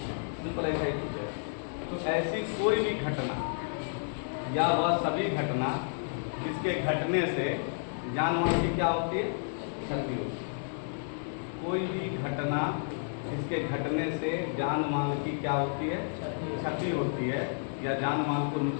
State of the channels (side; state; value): right; silent; 57 dB below the other